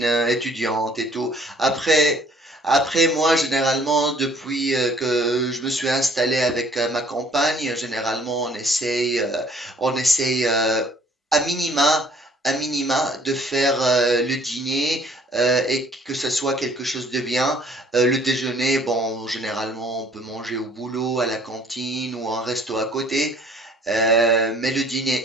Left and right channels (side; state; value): both; normal; correlation 0.58